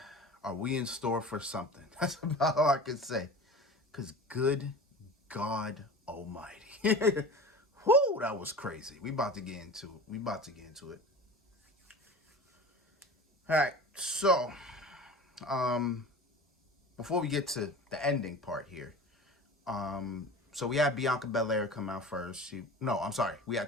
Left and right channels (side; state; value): both; normal; correlation 0.36